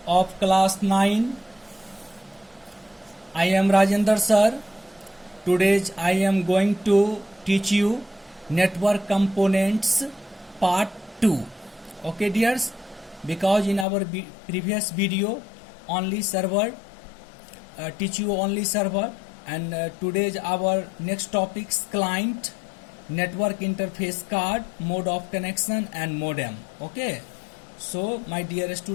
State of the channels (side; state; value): right; drops out; at 13.9 s